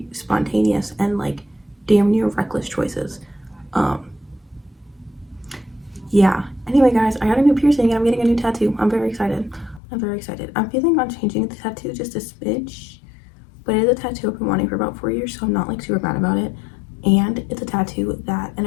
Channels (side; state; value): right; drops out; at 9.8 s